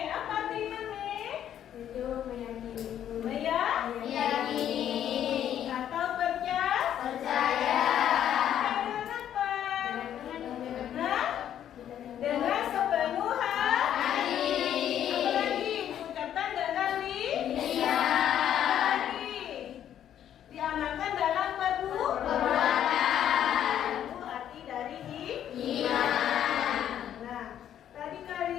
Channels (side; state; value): right; quieter; 10.4 dB